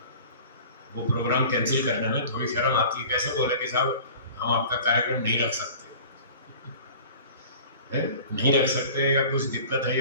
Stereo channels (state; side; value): inverted; both; correlation -0.42